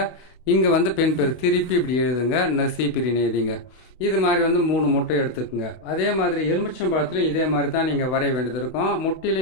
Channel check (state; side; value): late; right; 32 ms